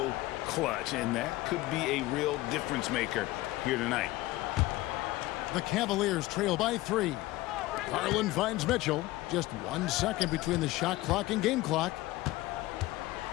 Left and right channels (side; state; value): right; quieter; 18.1 dB